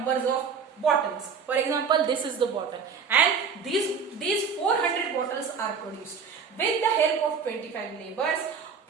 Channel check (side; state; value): left; quieter; 6.0 dB